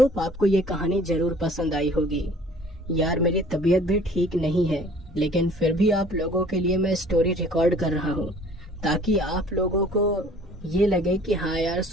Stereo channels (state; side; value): normal; both; correlation 0.52